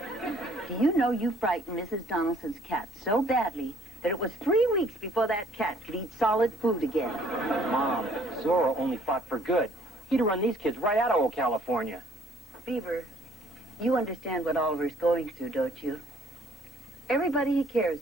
Do you know you frightened Mrs. Donaldson's cat so badly that it was 3 weeks before that cat could eat solid food again? Mom, Zorro only fought for good. He'd run these kids right out of old California. Beaver, you understand what Oliver's going through, don't you? Everybody he cares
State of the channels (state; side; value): normal; both; correlation 0.60